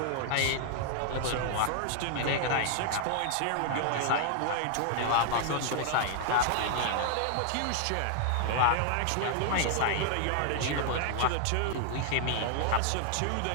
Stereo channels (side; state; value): both; different; correlation -0.01